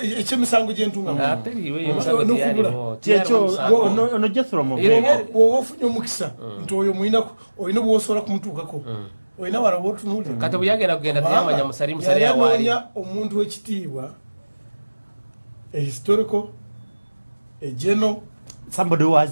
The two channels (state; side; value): inverted; both; correlation -1.00